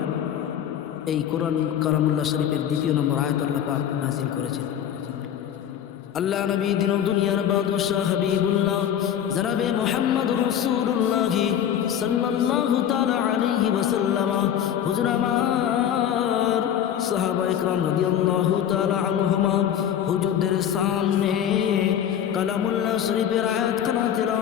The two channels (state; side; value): quieter; right; 9.7 dB